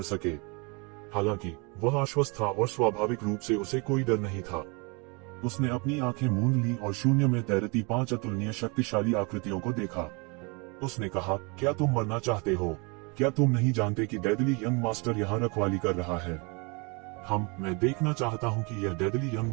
सके। हालांकि वह आश्वस्त था और स्वाभाविक रूप से उसे कोई डर नहीं था। उसने अपनी आंखें मूंद ली और शून्य में तैरती 5 अतुलनीय शक्तिशाली आकृतियों को देखा। उसने कहा, क्या तुम मरना चाहते हो? क्या तुम नहीं जानते कि डेडली यंग मास्टर यहाँ रखवाली कर रहा है? मैं देखना चाहता हूँ कि यह डेडली यंग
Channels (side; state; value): left; quieter; 30.5 dB